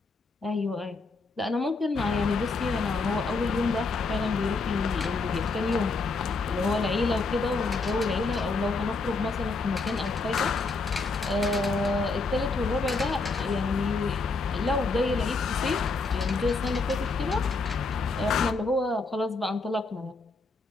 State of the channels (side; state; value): right; quieter; 3.8 dB